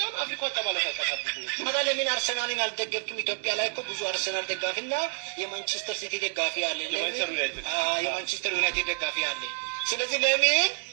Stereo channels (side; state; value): left; silent; digital silence